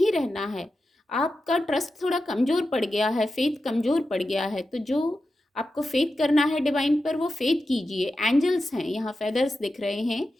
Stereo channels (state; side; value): normal; both; correlation 0.91